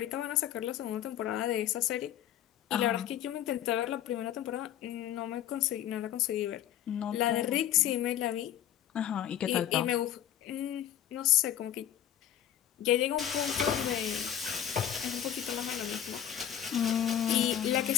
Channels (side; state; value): right; quieter; 10.7 dB